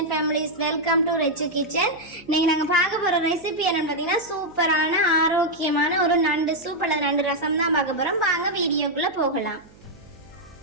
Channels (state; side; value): noise; right; hum, 26 dB below the sound